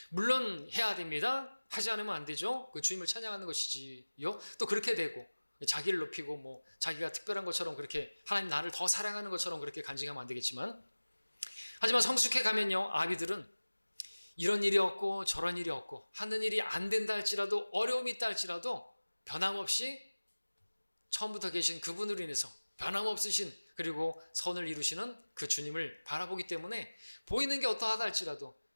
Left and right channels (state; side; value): inverted; both; correlation -1.00